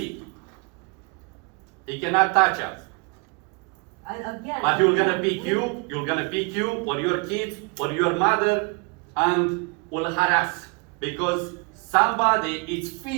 He cannot touch us. And again. But you're gonna pick you or your kids or your mother and will harass. Because somebody is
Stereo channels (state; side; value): quieter; left; 31.6 dB